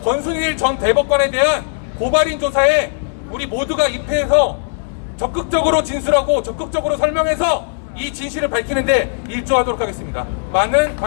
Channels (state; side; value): silent; right; digital silence